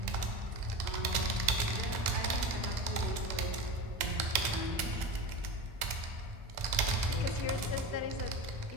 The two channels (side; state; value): left; late; 2.0 ms